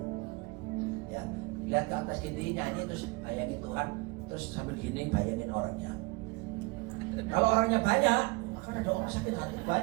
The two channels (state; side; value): quieter; left; 25.3 dB